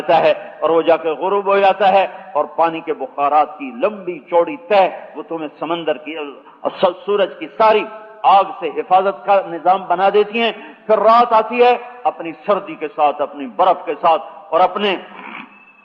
ہے اور وہ جا کے غروب ہو جاتا ہے، اور پانی کے بخارات کی لمبی چوڑی تہ وہ تمہیں سمندر کی سورج کی ساری آگ سے حفاظت کا نظام بنا دیتی ہیں۔ پھر رات آتی ہے اپنی سردی کے ساتھ، اپنی برف کے ساتھ اور اپنے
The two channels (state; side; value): identical; both; correlation 1.00